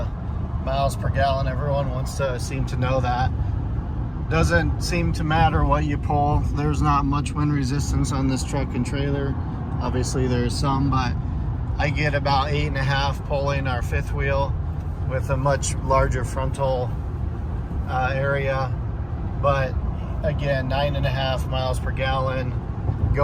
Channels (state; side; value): identical; both; correlation 1.00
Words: miles per gallon. Everyone wants to seem to know that. Doesn't seem to matter what you pull. There's not much wind resistance on this truck and trailer. Obviously there's some, but I get about 8.5 pulling our fifth wheel with a much larger frontal area. But again, 9.5 miles per gallon